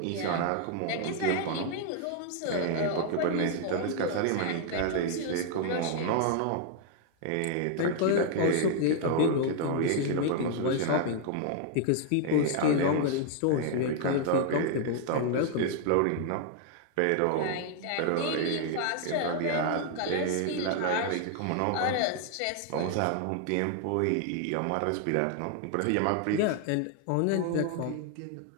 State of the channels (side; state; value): both; different; correlation 0.00